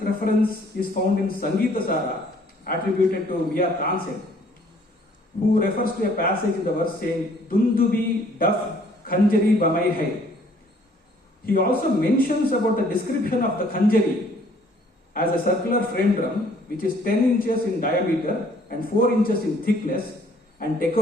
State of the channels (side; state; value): both; normal; correlation 0.60